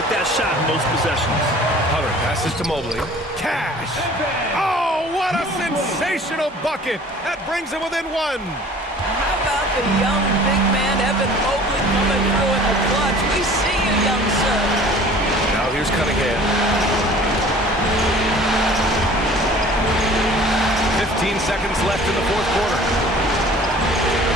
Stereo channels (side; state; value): both; normal; correlation 0.48